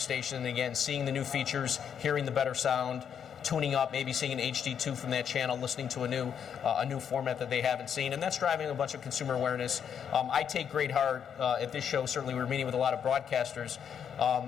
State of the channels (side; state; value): right; quieter; 8.0 dB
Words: and again seeing the new features, hearing the better sound, tuning up, maybe seeing an HD2 from that channel, listening to a new format that they haven't seen, and that's driving a bunch of consumer awareness. I take great heart at this show. Certainly, we're meeting with a lot of broadcasters,